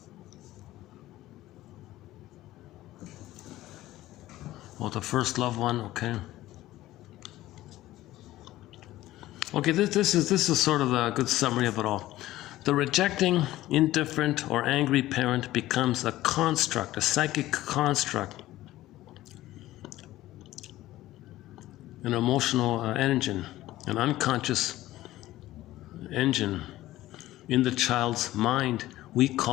Oh, the first love one, okay. Okay, this is sort of a good summary of it all. The rejecting, indifferent, or angry parent becomes a construct, a psychic construct, an emotional engine, an unconscious engine in the child's mind we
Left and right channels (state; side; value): quieter; right; 15.7 dB